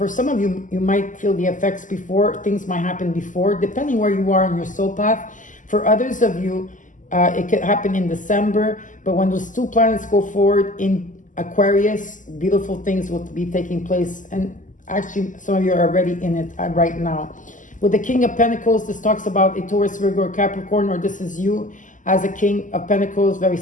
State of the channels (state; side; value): late; right; 0.37 ms